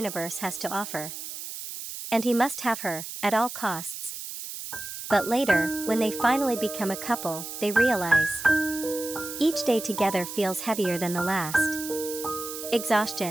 has to offer. And he must have her, at all costs. But later, when they finally become a couple, they realize each day together feels heavier than the last.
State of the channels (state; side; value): noise; right; hiss, 9 dB below the sound